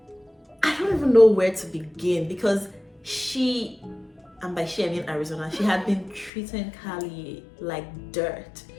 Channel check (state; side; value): drops out; right; at 6.3 s